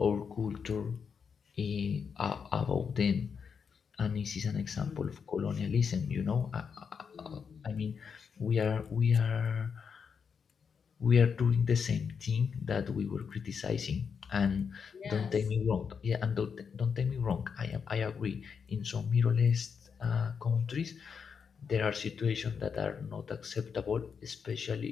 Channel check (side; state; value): right; quieter; 6.3 dB